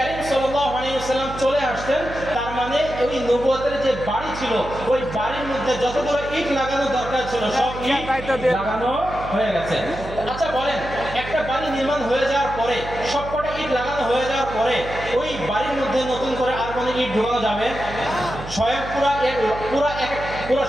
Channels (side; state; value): right; noise; hum, 11 dB below the sound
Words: সাল্লাল্লাহু আলাইহি ওয়াসাল্লাম চলে আসতেন, তার মানে ওই নবুয়তের যে বাড়ি ছিল ওই বাড়ির মধ্যে যতগুলো ইট লাগানো দরকার ছিল সব ইট লাগানো হয়ে গেছে। আচ্ছা বলেন, একটা বাড়ি নির্মাণ হয়ে যাওয়ার পরে, সবকটা ইট লাগানো হয়ে যাওয়ার পরে ওই বাড়ির মধ্যে নতুন করে আর কোনো ইট ঢোকানো যাবে? স্বয়ং পুরা